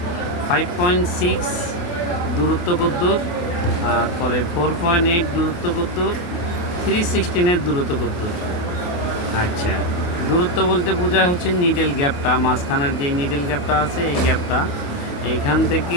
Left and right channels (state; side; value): late; right; 28 ms